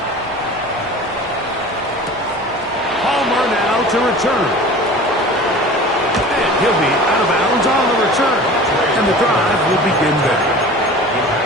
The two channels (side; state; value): both; normal; correlation 0.40